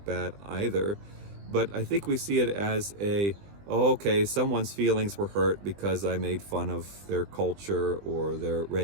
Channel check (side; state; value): left; late; 20 ms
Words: bad either, but I think we see it as okay, someone's feelings were hurt because I made fun of their culture or their